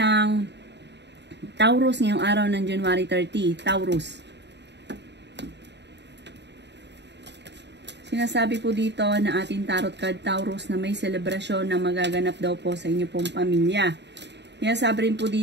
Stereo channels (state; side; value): late; left; 0.50 ms